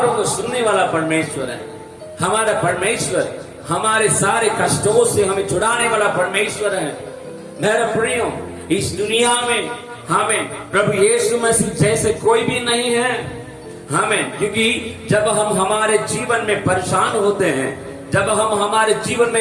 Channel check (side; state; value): both; identical; correlation 1.00